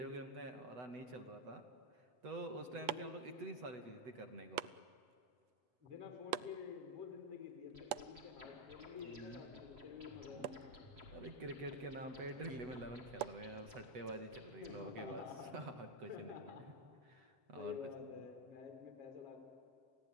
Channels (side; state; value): left; late; 8.3 ms